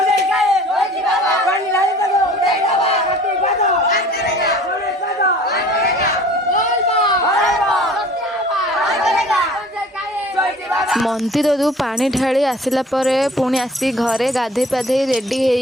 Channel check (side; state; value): both; normal; correlation 0.48